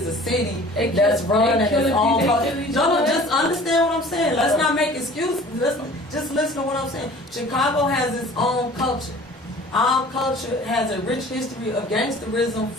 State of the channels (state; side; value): normal; both; correlation 0.47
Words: a city that's run at its own culture. No, just understand what I'm saying. Let's not make excuses. Just listen to what I'm saying. Chicago has its own culture. Our culture has a rich history of gangsterism,